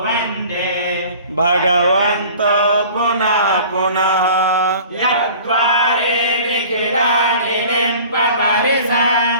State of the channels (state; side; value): inverted; both; correlation -0.45